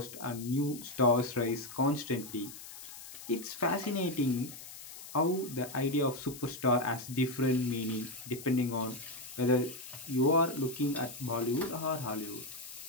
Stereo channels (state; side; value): noise; left; hiss, 14 dB below the sound